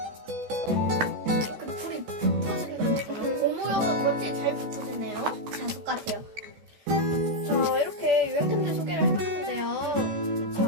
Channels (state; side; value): late; left; 14 ms